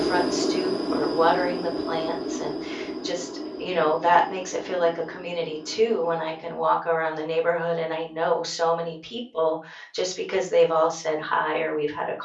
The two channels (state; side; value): identical; both; correlation 1.00